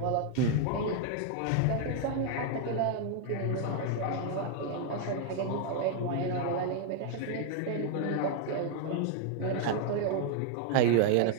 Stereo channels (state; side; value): different; both; correlation 0.00